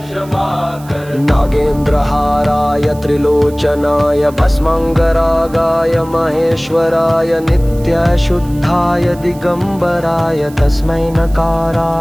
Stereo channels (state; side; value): noise; right; hiss, 23 dB below the sound